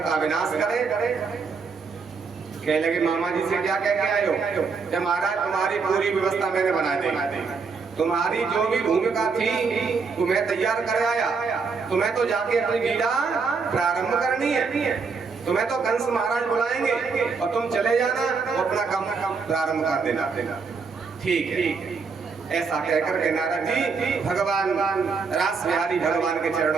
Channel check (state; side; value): quieter; left; 5.0 dB